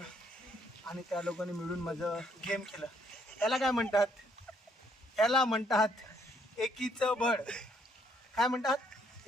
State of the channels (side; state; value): both; normal; correlation 0.69